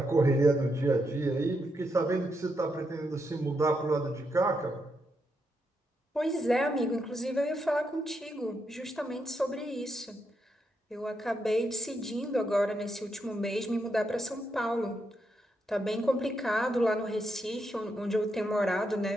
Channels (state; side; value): normal; both; correlation 0.81